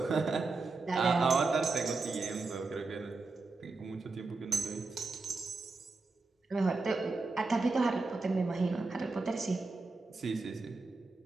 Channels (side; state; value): left; quieter; 3.7 dB